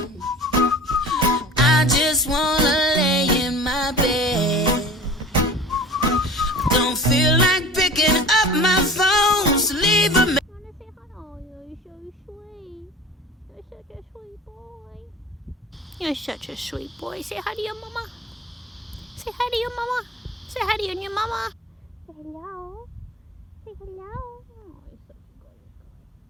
I just wanna lay in my bed. Don't feel like picking up my phone, so leave a message. Wanna say hello? You're so sweet. You're such a sweet boy. You're such a sweet boy. Say hi to your mama. Say hi to your mama. Say hi to your new mama. Say hello. Say hello. Oh, you're such a good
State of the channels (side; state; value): both; normal; correlation 0.39